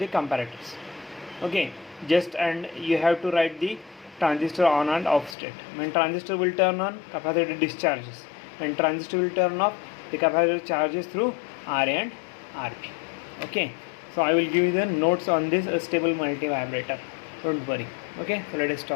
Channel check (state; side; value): drops out; right; at 5.4 s